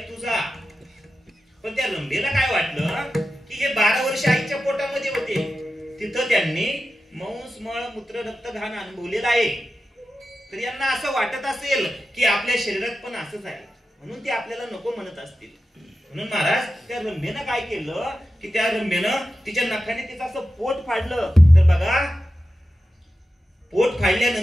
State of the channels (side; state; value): both; normal; correlation 0.92